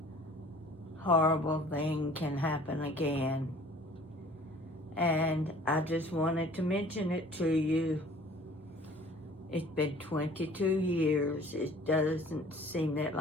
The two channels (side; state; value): both; normal; correlation 0.50